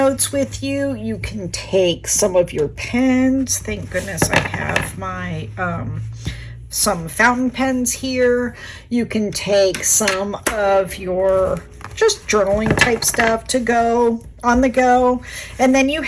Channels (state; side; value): identical; both; correlation 1.00